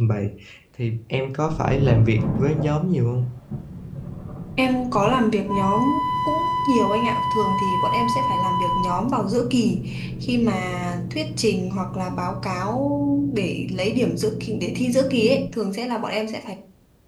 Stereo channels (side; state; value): both; identical; correlation 1.00